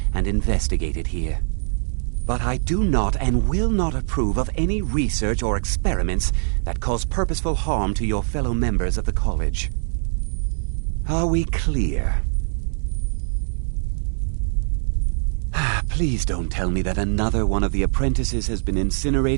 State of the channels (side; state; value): left; silent; digital silence